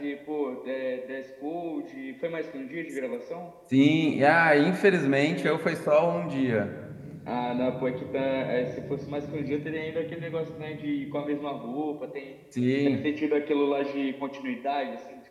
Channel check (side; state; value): both; identical; correlation 1.00